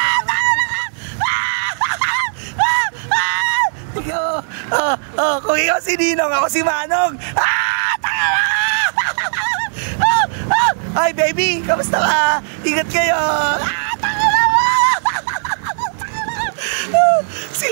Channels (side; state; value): left; silent; digital silence